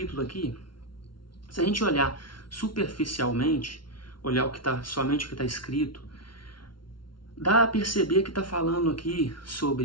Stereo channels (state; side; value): late; right; 0.73 ms